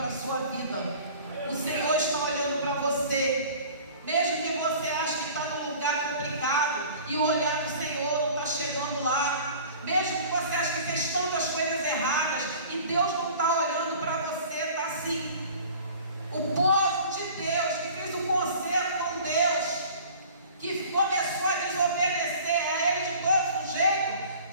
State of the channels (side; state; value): both; inverted; correlation -0.45